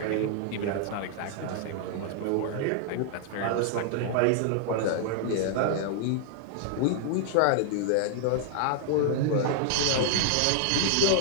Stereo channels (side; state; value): both; different; correlation -0.01